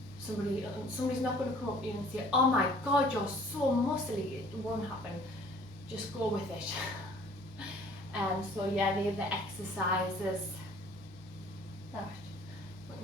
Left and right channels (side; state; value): both; normal; correlation 0.54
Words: somebody's not going to come up to you and say, oh my God, you're so muscly. It won't happen. Just go with it. So yeah, they're the exercises that we